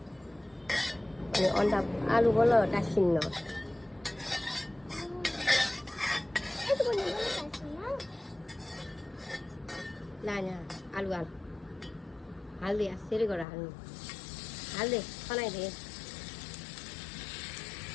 अनि अन्डा आलु बल्ल टाँसिन्न ला यहाँ आलु हाल हाल्दे यसरी गरेर हाल्नु हाल्दे खनाइदे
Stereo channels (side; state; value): right; drops out; at 13.5 s